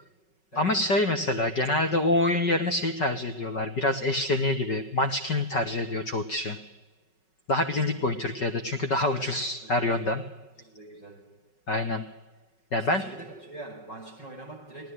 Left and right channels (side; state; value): right; late; 5.4 ms